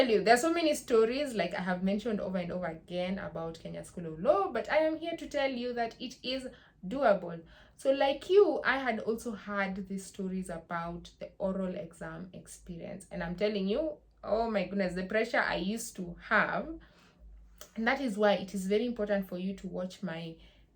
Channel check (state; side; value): identical; both; correlation 1.00